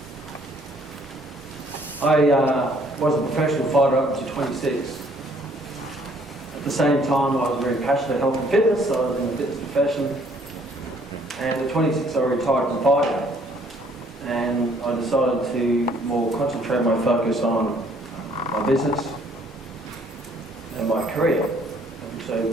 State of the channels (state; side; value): normal; both; correlation 0.62